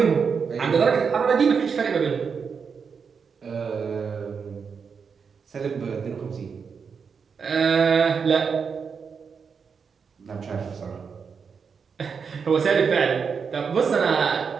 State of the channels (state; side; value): quieter; left; 6.0 dB